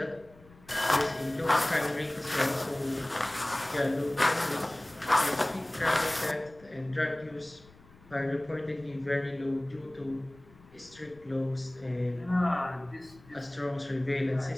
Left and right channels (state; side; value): noise; left; rumble, 25 dB below the sound